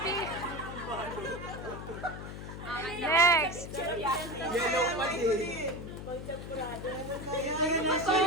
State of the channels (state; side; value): noise; left; hum, 9 dB below the sound